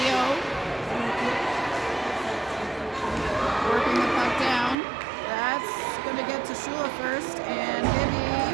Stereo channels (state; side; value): drops out; left; at 4.8 s